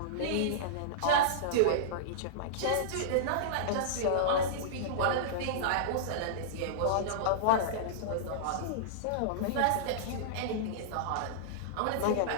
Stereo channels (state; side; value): different; both; correlation -0.03